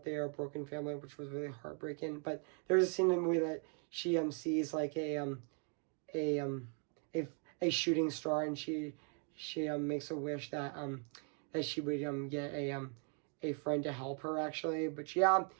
they are a broken family, which was really heartbreaking. But there's a scene in the movie that she sees like a a a shooting star, and she makes a wish that she would get a friend to help her, actually. But yeah,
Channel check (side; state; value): left; quieter; 39.8 dB